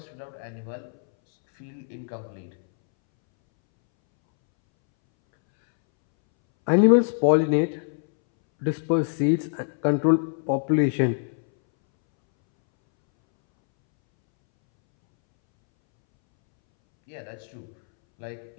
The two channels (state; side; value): silent; right; 62 dB below the other